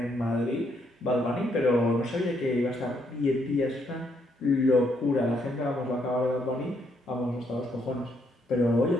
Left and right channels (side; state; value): both; normal; correlation 0.73